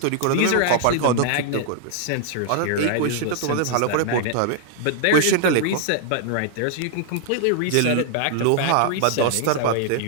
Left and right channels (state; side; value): different; both; correlation 0.00